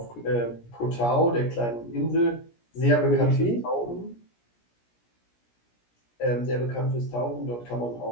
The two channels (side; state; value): right; late; 17 ms